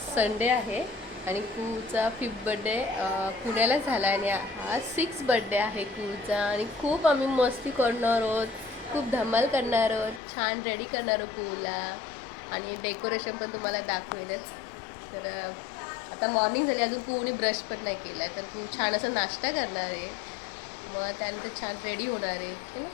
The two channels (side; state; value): right; drops out; at 10.2 s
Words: संडे आहे आणि कूचा 5th बड्डे पुण्याला झाला आणि हा 6th बड्डे आहे कूचा. आणि खूप आम्ही मस्ती करणार आहोत, खूप धमाल करणार आहोत, छान रेडी करणार आहोत कूला. आणि डेकोरेशन पण तुम्हाला दाखवेलच. तर आता मॉर्निंग झाली, अजून कूने ब्रश पण नाही केला, तर कू छान असं नाश्ता करणार आहे. मग त्यानंतर छान रेडी होणार आहे. चलो